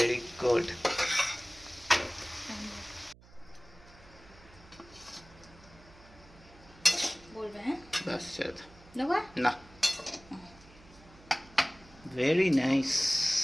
গুড। বলবে হ্যাঁ, বাস দেবো না, ভেরি নাইস।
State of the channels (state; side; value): noise; right; hum, 23 dB below the sound